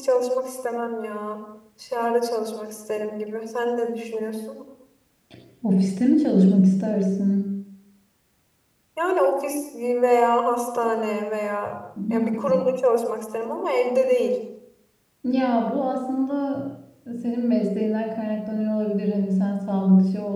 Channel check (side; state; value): both; identical; correlation 1.00